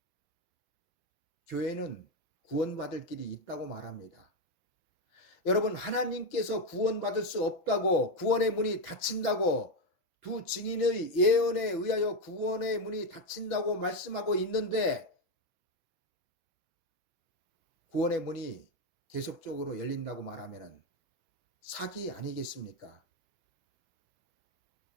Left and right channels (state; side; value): late; right; 6.0 ms